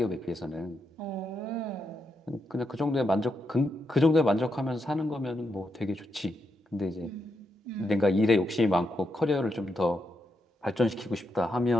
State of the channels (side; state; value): both; normal; correlation 0.83